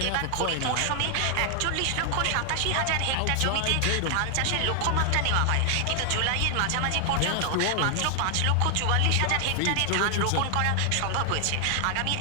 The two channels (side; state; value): both; different; correlation 0.00